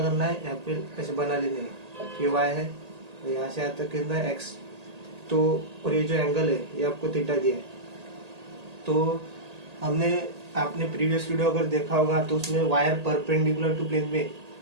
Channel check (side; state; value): left; late; 1.8 ms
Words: करना है, यहाँ पे ऐसे बना लेने हैं। ये वाई है और यहाँ से यहाँ तक कितना है एक्स। तो और ये जो एंगल है ये आपको थीटा दिया है। तो आपने प्रीवियस वीडियो अगर देखा होगा तो उसमें वायर परपेंडिकुलर टू प्लेन में